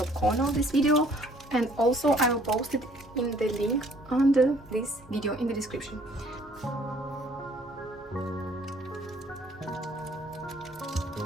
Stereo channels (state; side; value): normal; both; correlation 0.59